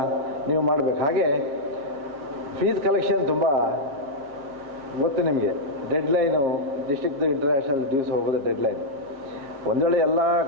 ನೀವು ಮಾಡಬೇಕು. ಹಾಗೆ ಫೀಸ್ ಕಲೆಕ್ಷನ್ ತುಂಬ ಗೊತ್ತು ನಿಮಗೆ. ಡೆಡ್ಲೈನು ಡಿಸ್ಟ್ರಿಕ್ದು ಇಂಟರ್ನ್ಯಾಷನಲ್ ಡ್ಯೂಸ್ ಹೋಗೋದು ಡೆಡ್ಲೈನ್. ಒಂದು ವೇಳೆ ಎಲ್ಲ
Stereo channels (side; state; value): left; late; 7.4 ms